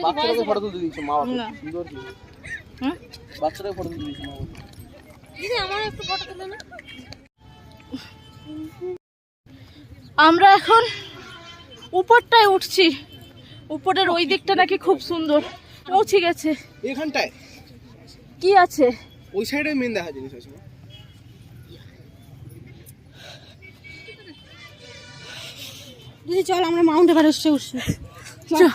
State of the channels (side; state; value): both; identical; correlation 1.00